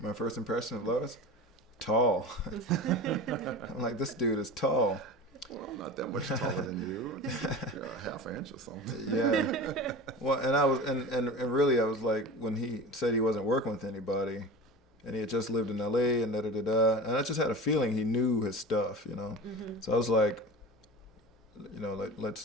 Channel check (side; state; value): both; normal; correlation 0.32